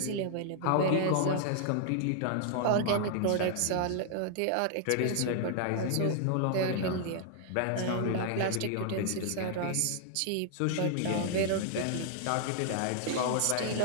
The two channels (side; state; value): both; different; correlation 0.00